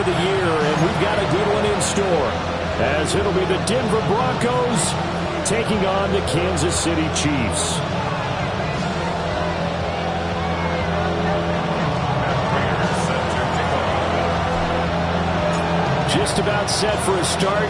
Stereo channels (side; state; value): both; identical; correlation 1.00